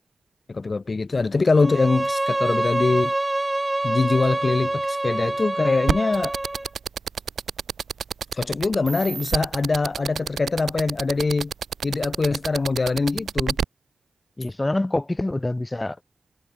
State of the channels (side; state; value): both; normal; correlation 0.94